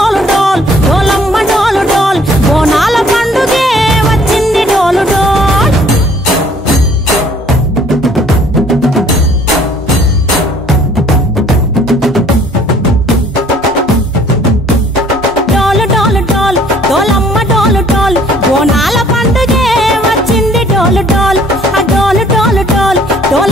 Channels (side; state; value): both; normal; correlation 0.57